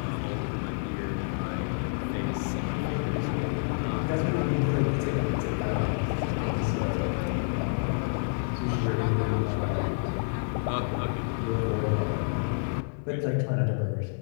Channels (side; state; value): right; silent; 56 dB below the other